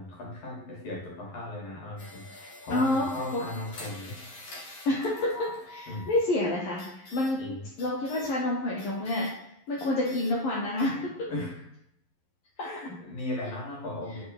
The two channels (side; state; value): right; late; 11 ms